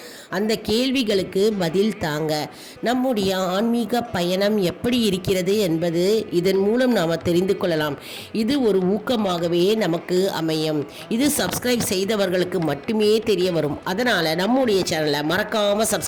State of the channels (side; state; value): both; identical; correlation 1.00